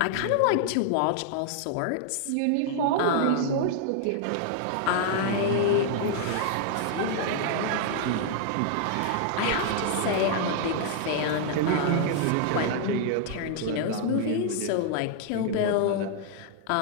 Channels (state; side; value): different; both; correlation -0.01